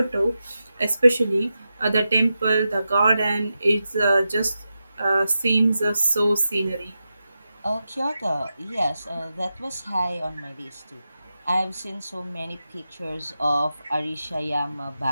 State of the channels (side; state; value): both; inverted; correlation -0.90